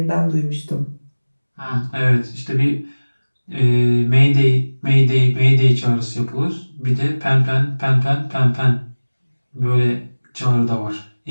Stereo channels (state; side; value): inverted; both; correlation -1.00